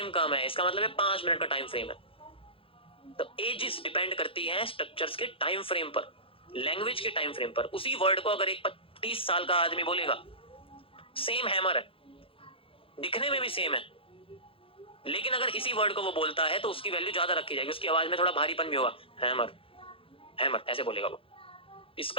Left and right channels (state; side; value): late; right; 0.26 ms